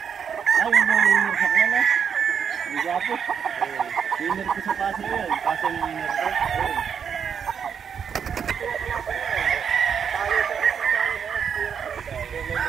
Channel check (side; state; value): left; quieter; 7.2 dB